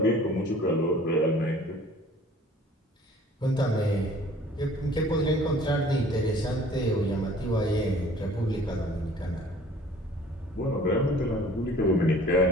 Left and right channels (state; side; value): normal; both; correlation 0.51